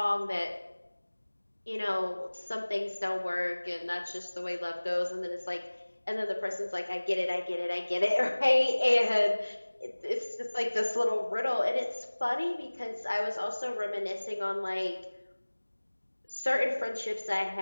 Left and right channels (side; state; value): both; inverted; correlation -1.00